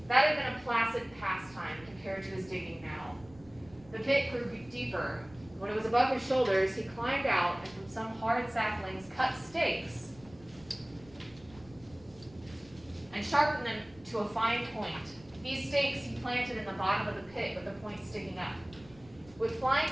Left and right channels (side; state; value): right; noise; rumble, 23 dB below the sound